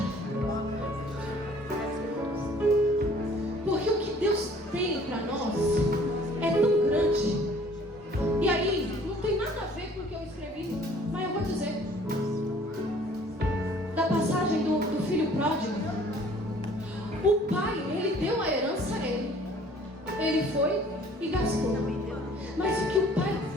Porque o que Deus tem para nós é tão grande. E aí, não tem nada a ver com o que eu escrevi, mas eu vou dizer. Da passagem do filho pródigo. O pai, ele deu a herança a ele. Ele foi e gastou. Mas o que o pai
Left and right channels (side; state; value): both; normal; correlation 0.54